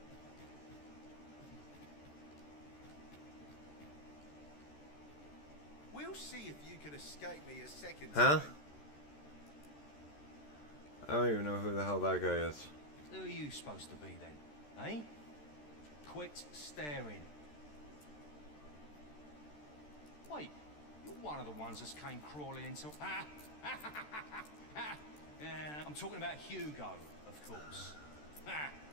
We'll see if you can escape me a second Huh? time. I don't even know who the hell that guy is. Who are you supposed to be then, eh? Quit staring. Wait, you're one of the ones that came crawling into... I'm talking about Hugo, of course.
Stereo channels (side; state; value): right; late; 13 ms